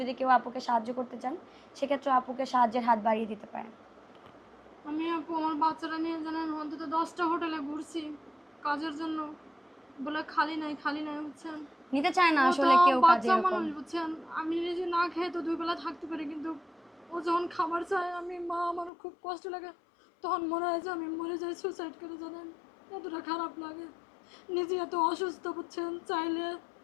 কেউ আপুকে সাহায্য করতে চান সেক্ষেত্রে আপুকে সাহায্যের হাত বাড়িয়ে দিতে পারেন। আমি আপু আমার বাচ্চারা নিয়ে জানেন অন্তত 10টা হোটেলে ঘুরছি কাজের জন্য, বলে খালি নাই খালি নাই, বুঝছেন। নিতে চায় না ও তো আসলে কেউ কাজে বাচ্চা এরকম। মানুষ, বুঝছেন। আমি নিজে না খেয়ে তো 2 বেলা থাকতে পারি, কিন্তু ও যখন খাবার চায় আমি মা, আমার খুব কষ্ট লাগে। তখন মনে হয় যে আমি মরে যাই, সুসাইড করে, জানেন। এতটা খারাপ লাগে। নিজে এত অসুস্থ, বুঝছেন। চাইলে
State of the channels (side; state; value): right; drops out; at 18.9 s